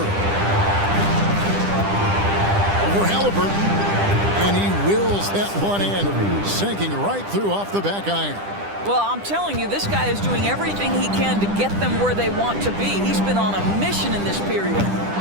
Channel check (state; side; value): late; left; 10 ms